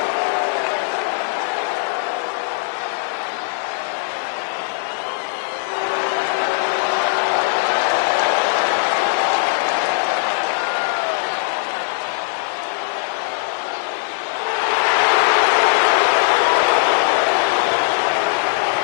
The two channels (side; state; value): right; silent; digital silence